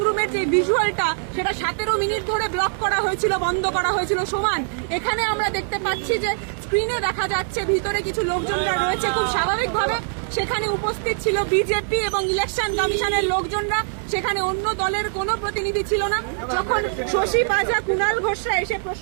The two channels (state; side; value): silent; left; digital silence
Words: রুমের যে ভিজুয়ালটা, সেটা 17 মিনিট ধরে ব্লক করা হয়েছিল, বন্ধ করা হয়েছিল। সমান এখানে আমরা দেখতে পাচ্ছি যে স্ক্রিনে দেখা যাচ্ছে ভিতরে কিছু লোকজনরা রয়েছে, খুব স্বাভাবিকভাবে সেখানে উপস্থিত ছিল বিজেপি এবং ইলেকশন কমিশনের লোকজনরা, সেখানে অন্য দলের কোনো প্রতিনিধি ছিল না। যখন শশী পাজা, কুণাল ঘোষরা এসে